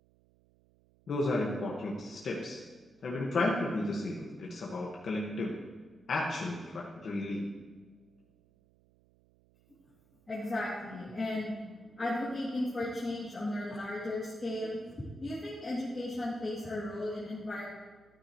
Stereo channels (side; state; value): right; noise; hum, 30 dB below the sound